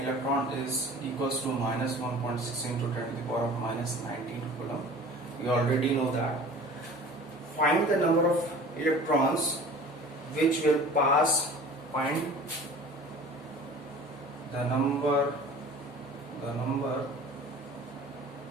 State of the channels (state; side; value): normal; both; correlation 0.43